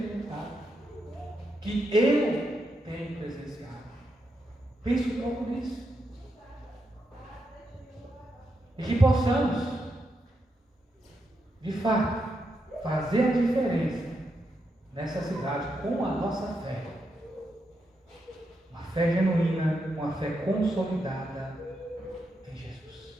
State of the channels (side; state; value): both; normal; correlation 0.83